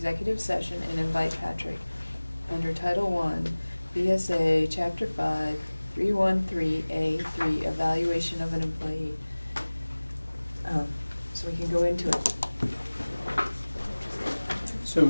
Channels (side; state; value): both; inverted; correlation -1.00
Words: session and invite Patrick under Title I, BSA, Chapter 5, 313A3, evaluation of an employee. So we can go into it. So